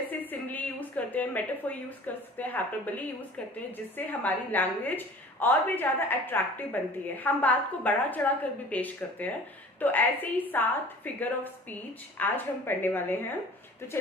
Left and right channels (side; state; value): both; normal; correlation 0.45